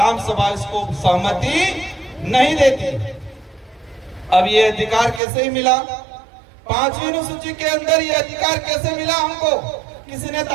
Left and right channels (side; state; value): left; drops out; at 5.2 s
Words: सभा इसको सहमति नहीं देती। अब ये अधिकार कैसे ही मिला? 5वीं अनुसूची के अंदर ये अधिकार कैसे मिला हमको? किसी ने